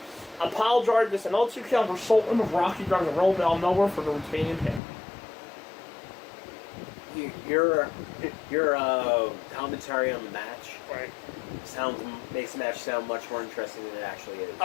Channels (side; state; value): right; drops out; at 4.8 s